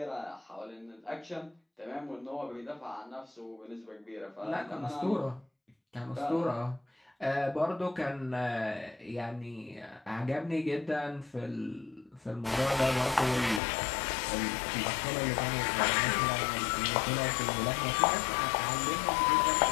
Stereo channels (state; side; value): drops out; right; at 13.6 s